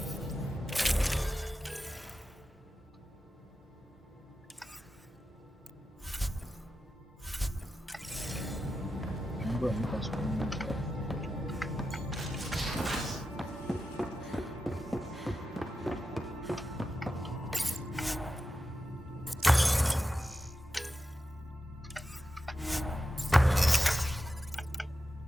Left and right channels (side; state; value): both; normal; correlation 0.91